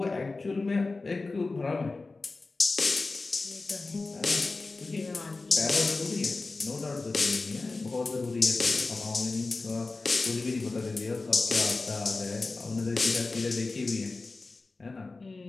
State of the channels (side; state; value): right; quieter; 3.6 dB